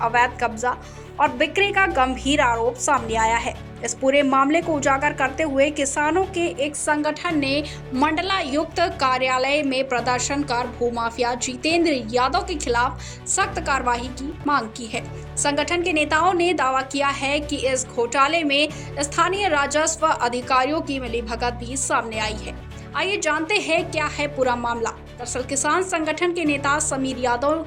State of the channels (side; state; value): both; identical; correlation 1.00